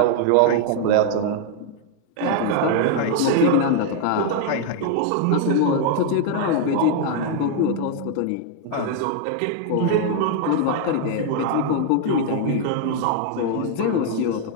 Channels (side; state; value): both; different; correlation 0.00